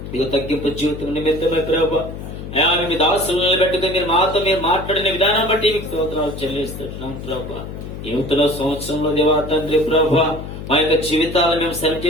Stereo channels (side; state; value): left; noise; hum, 10 dB below the sound